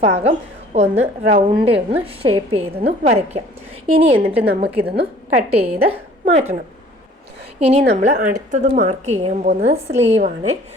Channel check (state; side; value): normal; both; correlation 0.52